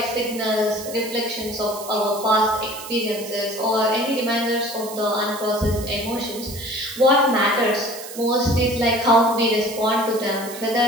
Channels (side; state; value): right; noise; hiss, 13 dB below the sound